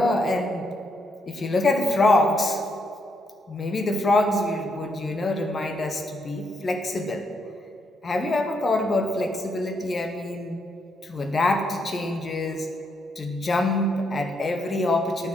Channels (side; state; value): both; normal; correlation 0.77